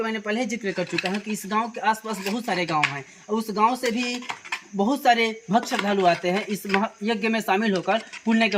मैंने पहले जिक्र कर चुका हूँ कि इस गांव के आसपास बहुत सारे गांव हैं और उस गांव से भी बहुत सारे भक्त श्रद्धालु आते हैं। इस यज्ञ में शामिल होकर पुण्य के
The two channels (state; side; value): identical; both; correlation 1.00